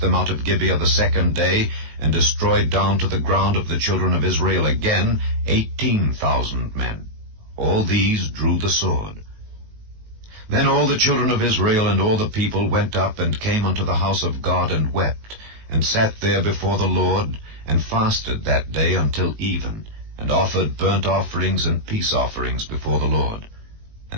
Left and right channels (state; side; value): late; left; 19 ms